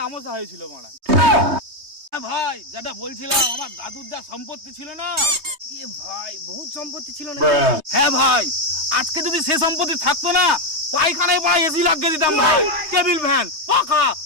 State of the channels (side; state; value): left; late; 3.2 ms